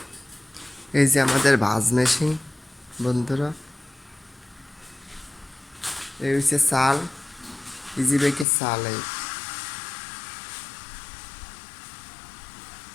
এই যে আমাদের ভাজ মেশিন বন্ধুরা, এই হচ্ছে চাল, ইজি বাইকের চাল।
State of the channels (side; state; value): right; drops out; at 8.5 s